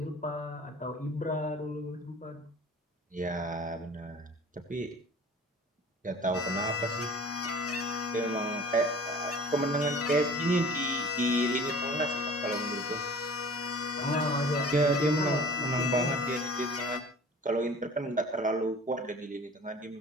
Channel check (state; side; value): normal; both; correlation 0.45